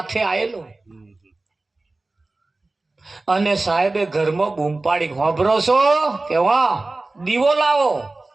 આવેલો અને સાહેબે ઘરમાં બૂમ પાડી, હોભરો છો કે વાહ દીવો લાવો.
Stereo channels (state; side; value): quieter; left; 3.2 dB